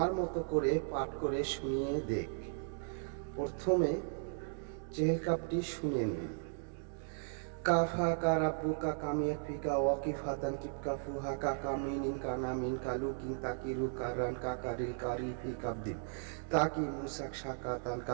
মতো করে পাঠ করে শুনিয়ে দেখ। প্রথমে চেহেলকাপটি শুনে নিন। কাফা কা রাব্বুকা কামিয়া ফিকা ওয়াকিফাতান কিপকা ফুহা কা কামিনিন কা নামিন কা লুকিন তাকিরু কারান কা কারিল কারি ফি কাবদিন তাকি মুসাক শাকাতান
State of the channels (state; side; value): silent; left; digital silence